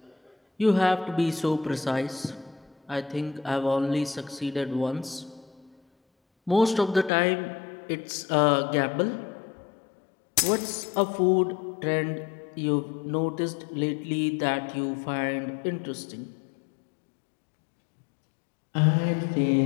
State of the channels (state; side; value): drops out; right; at 7.1 s